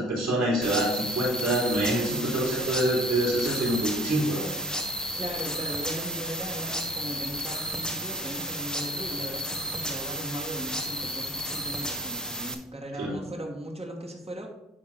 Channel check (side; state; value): both; normal; correlation 0.47